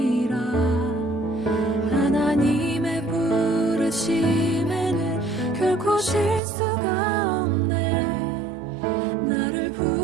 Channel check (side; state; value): left; drops out; at 6.4 s